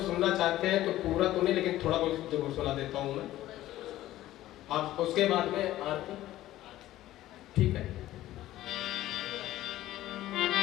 सुनना चाहते हैं तो पूरा तो नहीं लेकिन थोड़ा बहुत जरूर सुना देता हूँ मैं, आप उसके बाद में आरती, ठीक है।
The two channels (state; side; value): quieter; right; 14.8 dB